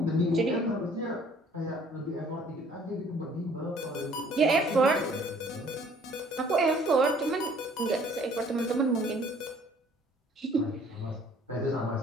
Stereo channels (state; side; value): normal; both; correlation 0.57